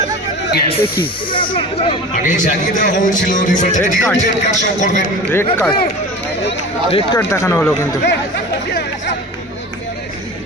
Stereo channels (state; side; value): normal; both; correlation 0.35